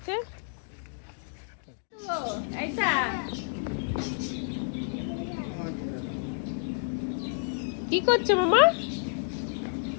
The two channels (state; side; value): silent; right; digital silence